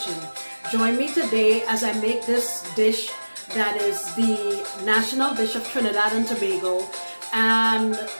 Join me today as I make this dish that is the national dish of Trinidad and Tobago, and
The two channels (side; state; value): both; inverted; correlation -1.00